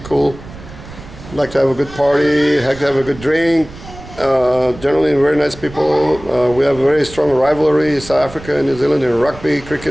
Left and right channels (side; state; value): right; noise; rumble, 16 dB below the sound